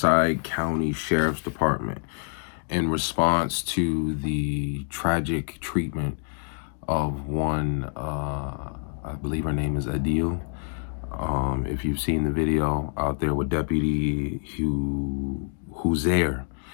County Sheriff's Department in response to the tragic treatment of one, I believe her name is Adeel. If you've seen the video out there with Deputy who's there,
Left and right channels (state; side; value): silent; right; digital silence